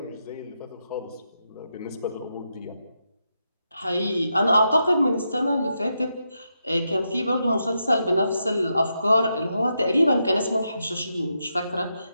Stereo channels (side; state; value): both; inverted; correlation -0.84